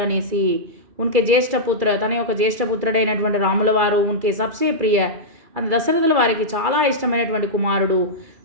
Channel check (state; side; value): late; left; 2.3 ms